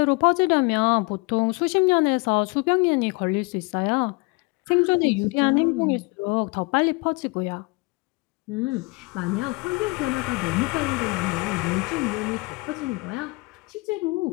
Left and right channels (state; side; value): quieter; right; 27.1 dB